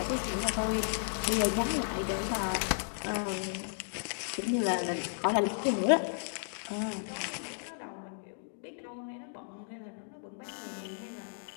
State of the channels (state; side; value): silent; right; digital silence